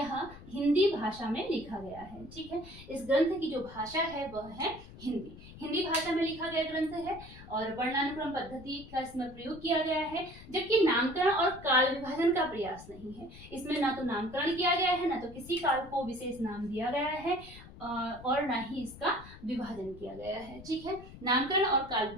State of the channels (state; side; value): noise; left; rumble, 17 dB below the sound